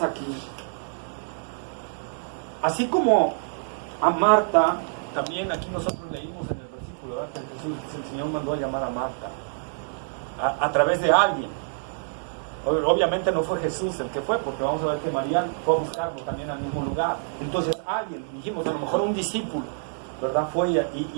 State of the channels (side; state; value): left; silent; digital silence